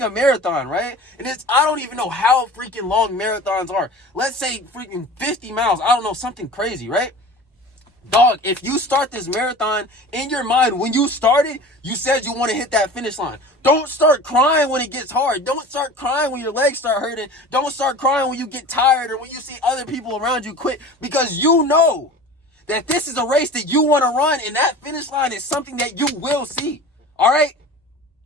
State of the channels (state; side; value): normal; both; correlation 0.38